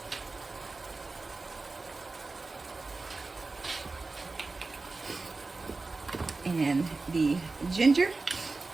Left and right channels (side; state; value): left; quieter; 3.6 dB